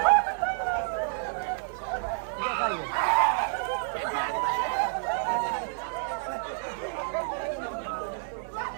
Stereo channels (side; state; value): left; silent; digital silence